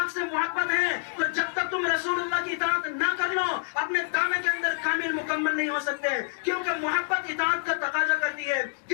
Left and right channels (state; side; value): silent; right; digital silence